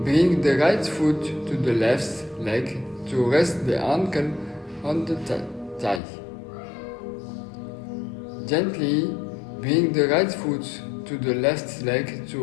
bring the right foot to the left leg to rest the ankle on the thigh. Gently bring the right foot to the left leg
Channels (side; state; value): right; drops out; at 6.0 s